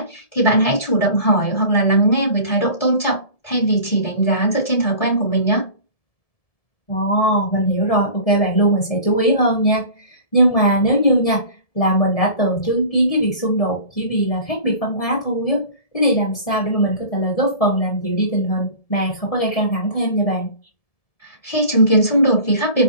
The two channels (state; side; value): late; right; 1.7 ms